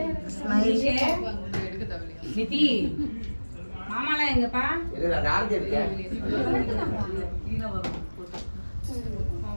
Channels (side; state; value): both; inverted; correlation -1.00